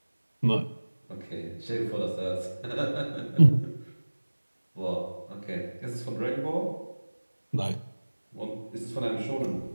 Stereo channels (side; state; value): both; inverted; correlation -1.00